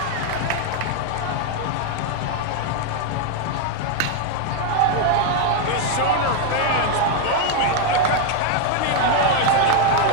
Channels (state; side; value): different; both; correlation 0.01